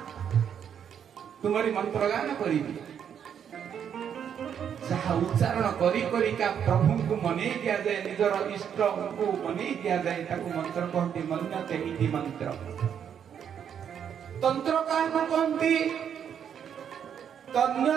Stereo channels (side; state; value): left; quieter; 8.4 dB